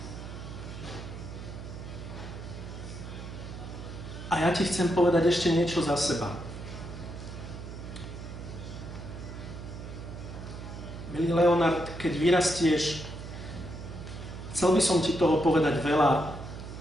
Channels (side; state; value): right; noise; hum, 10 dB below the sound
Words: A ja ti chcem povedať ešte niečo za seba. Milý Leonard, keď vyrastieš, chcel by som ti toho povedať veľa